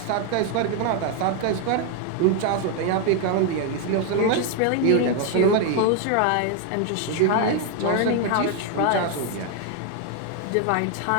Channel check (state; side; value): different; both; correlation 0.01